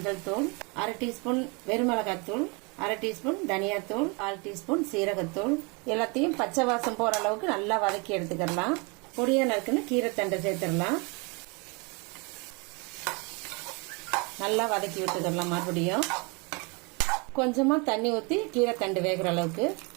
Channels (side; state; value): left; quieter; 30.5 dB